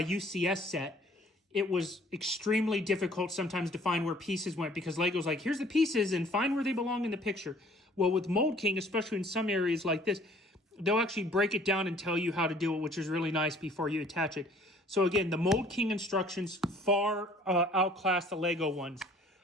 set, it was extremely difficult sometimes to find where pieces went because Lego's like, here's the pieces and find where they belong in the picture. Well, with Mould King, especially in some areas like this, they'll actually break it down and tell you how to do it, which is really nice before you attach it. So again, the Mould King instructions far outclass the Lego ones.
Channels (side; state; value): both; normal; correlation 0.55